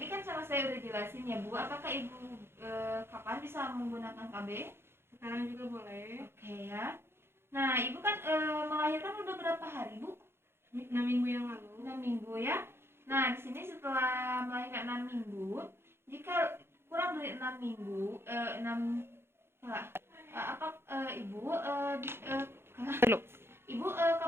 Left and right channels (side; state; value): left; late; 0.12 ms